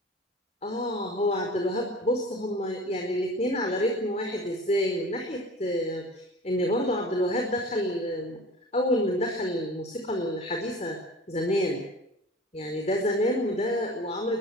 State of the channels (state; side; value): normal; both; correlation 0.41